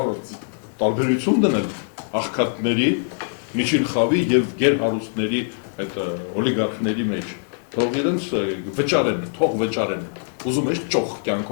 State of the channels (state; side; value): silent; right; 56 dB below the other